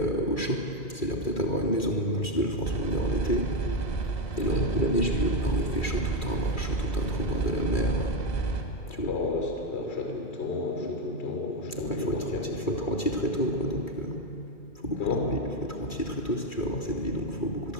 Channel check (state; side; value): late; right; 2.4 ms